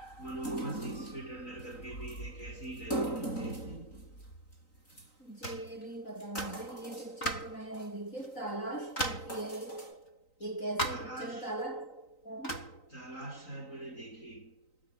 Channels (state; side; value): late; right; 3.9 ms